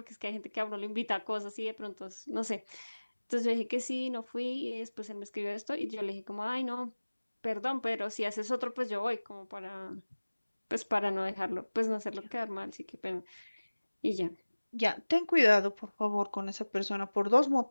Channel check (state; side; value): inverted; both; correlation -1.00